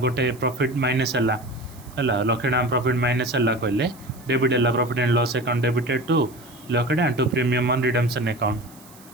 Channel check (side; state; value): right; noise; hiss, 23 dB below the sound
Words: गोटे प्रॉफिट माइनस है 1 लाख टाँह प्रॉफिट माइनस है कहले डेबिट है profit and loss account debited to 1 lakh टाँह to premium on redemption account